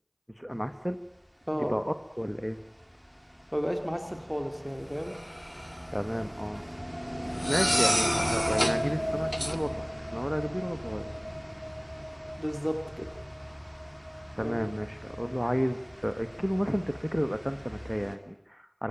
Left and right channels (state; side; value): identical; both; correlation 1.00